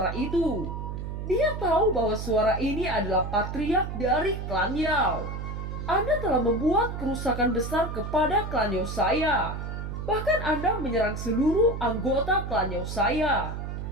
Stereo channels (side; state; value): right; noise; hum, 6 dB below the sound